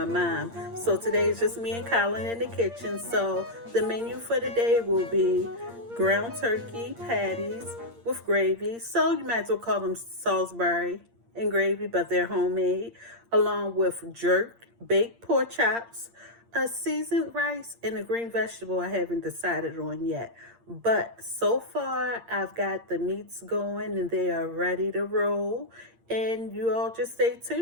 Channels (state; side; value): late; left; 8.7 ms